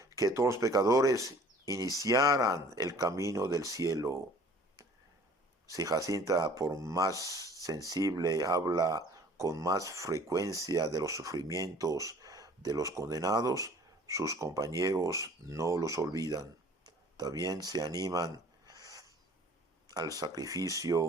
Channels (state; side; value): normal; both; correlation 0.50